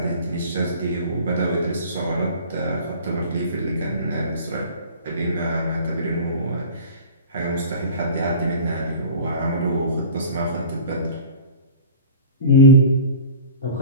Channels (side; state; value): both; inverted; correlation -0.41